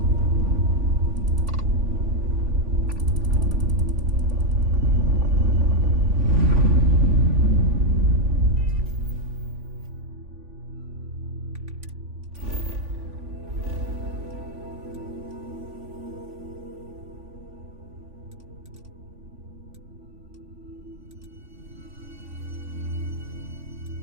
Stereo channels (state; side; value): late; left; 3.5 ms